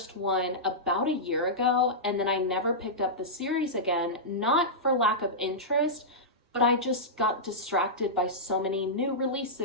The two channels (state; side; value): normal; both; correlation -0.12